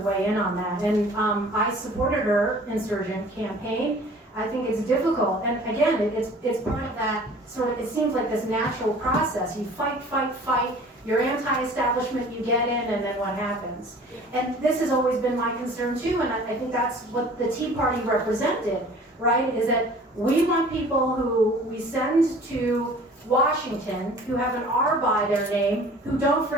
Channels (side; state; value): both; normal; correlation 0.47